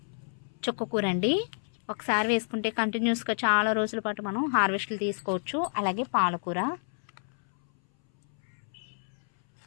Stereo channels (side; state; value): right; silent; 58 dB below the other